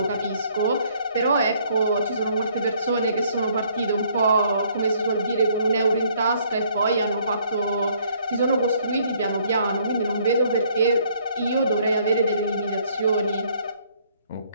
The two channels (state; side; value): inverted; both; correlation -0.64